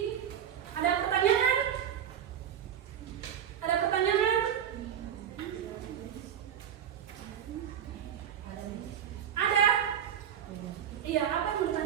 Ada pertanyaan? Ada pertanyaan? Ada? Iya, apa yang mau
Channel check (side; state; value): left; quieter; 9.3 dB